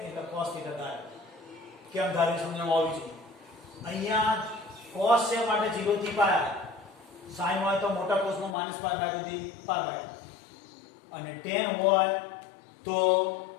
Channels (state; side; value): drops out; right; at 8.6 s